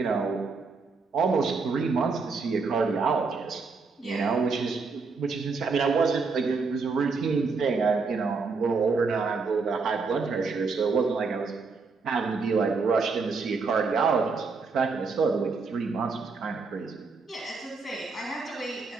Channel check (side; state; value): left; quieter; 4.5 dB